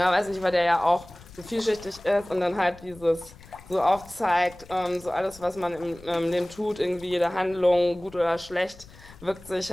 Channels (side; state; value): left; noise; rumble, 21 dB below the sound